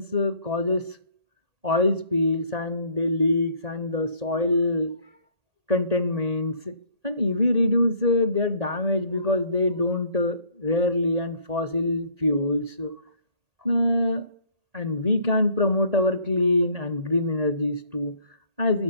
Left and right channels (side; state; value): left; late; 1.8 ms